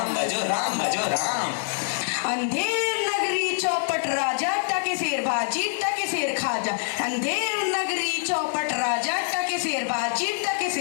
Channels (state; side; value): silent; right; digital silence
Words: भजो राम भजो राम। अंधेर नगरी, चौपट राजा, टके सेर बाजी, टके सेर खाजा। अंधेर नगरी, चौपट राजा, टके सेर बाजी, टके